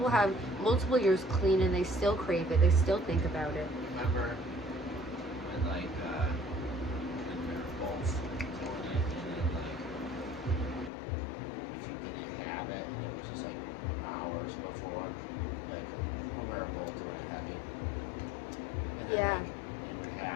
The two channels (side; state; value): right; drops out; at 10.9 s